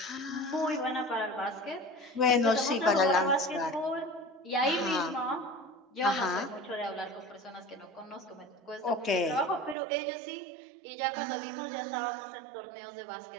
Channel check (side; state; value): left; drops out; at 9.8 s